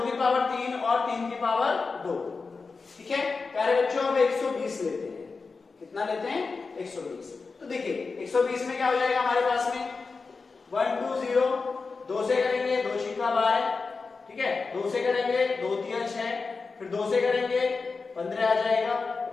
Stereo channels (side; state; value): right; quieter; 4.4 dB